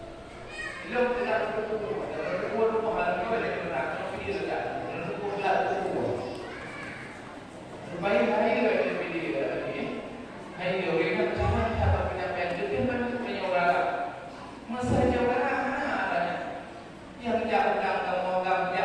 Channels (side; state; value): both; identical; correlation 1.00